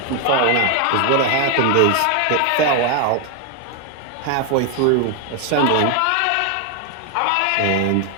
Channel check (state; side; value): different; both; correlation 0.01